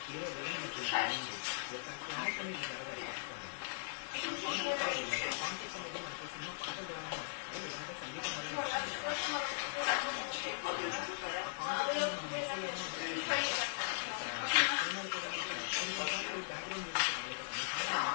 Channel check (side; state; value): right; silent; digital silence